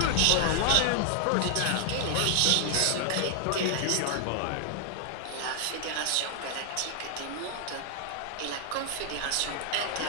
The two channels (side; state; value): both; different; correlation 0.00